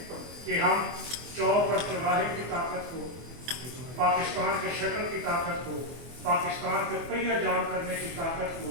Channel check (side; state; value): left; late; 24 ms